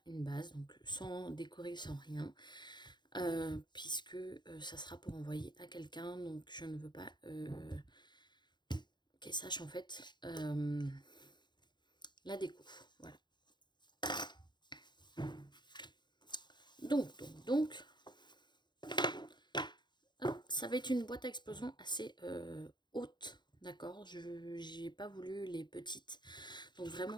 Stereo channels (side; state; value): right; late; 0.21 ms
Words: une base, donc sans décorer, sans rien, puisque ça sera pour envoyer à quelqu'un. Donc, je ne veux pas qu'elle sache en fait la déco. Voilà. Donc, ça va être une boîte à explosion assez haute, d'accord. Je n'ai pas voulu les petites, donc